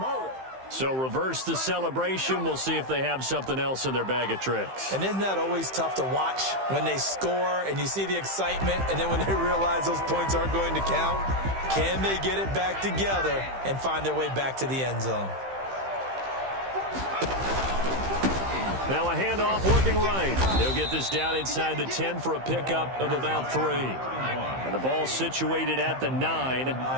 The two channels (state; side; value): late; left; 15 ms